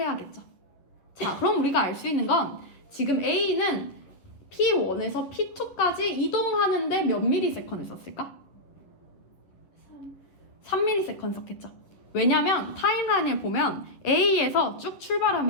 자, 그럼 우리가 알 수 있는 건 지금 A는 P1에서 P2까지 이동하는데 몇 ms를 썼을까? 3ms 썼겠죠. 왜냐면 타임라인을 보면 A에서 쭉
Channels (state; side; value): late; right; 11 ms